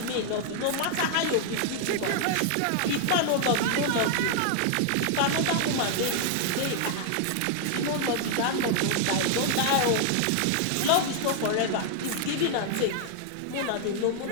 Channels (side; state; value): both; different; correlation 0.00